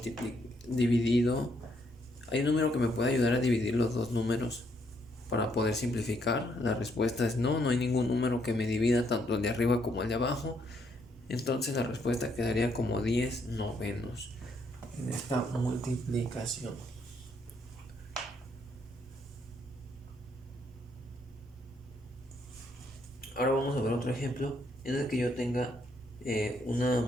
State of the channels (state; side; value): normal; both; correlation 0.72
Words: hay un número que me puede ayudar a dividir los dos números para poder simplificar. La respuesta es no hay ningún número que me divida tanto el de arriba como el de abajo. Entonces la respuesta quedaría como 10 novenos en esta multiplicación. Ahora vamos a ver otro ejemplo en el que yo tenga una